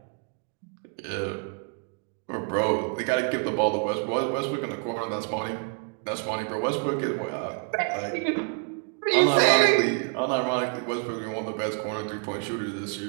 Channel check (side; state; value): left; quieter; 39.5 dB